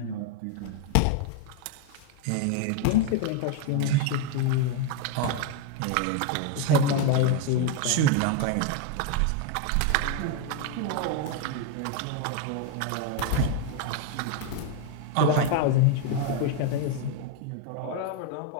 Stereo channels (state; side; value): different; both; correlation 0.01